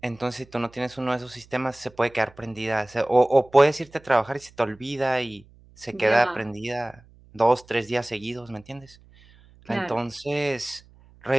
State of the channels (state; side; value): noise; right; hum, 26 dB below the sound